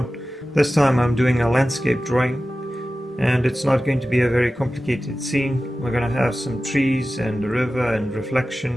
this time I'm doing a landscape drawing and it's not going to be a very complicated scene. We're going to have some trees and a river and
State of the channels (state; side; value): normal; both; correlation 0.95